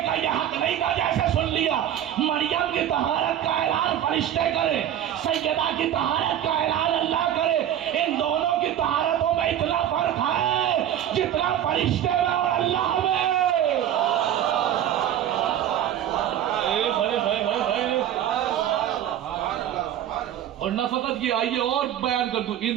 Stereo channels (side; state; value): left; quieter; 10.9 dB